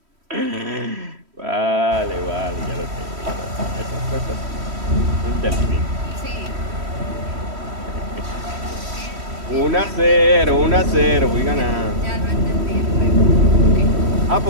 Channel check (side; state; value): left; late; 3.1 ms